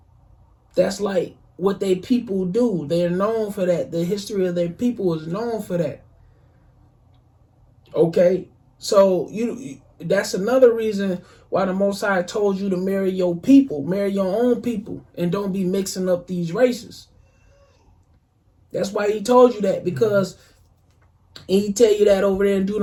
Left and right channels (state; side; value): identical; both; correlation 1.00